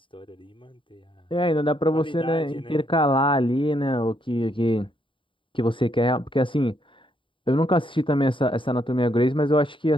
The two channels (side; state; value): right; late; 0.25 ms